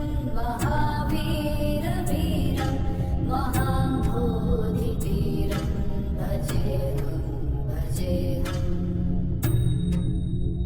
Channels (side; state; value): both; identical; correlation 1.00